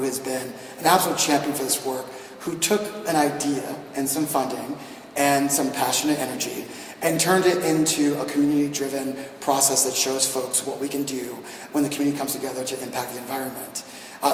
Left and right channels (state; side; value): identical; both; correlation 1.00